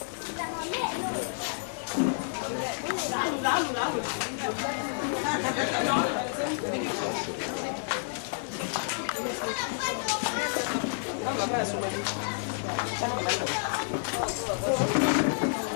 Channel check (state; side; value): silent; right; digital silence